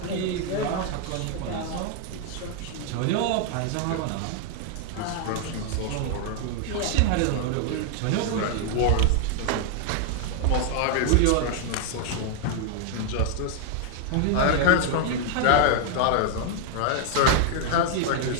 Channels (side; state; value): both; different; correlation 0.00